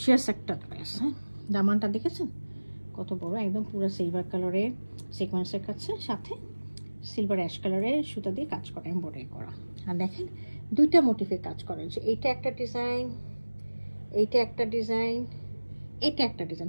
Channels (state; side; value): inverted; both; correlation -1.00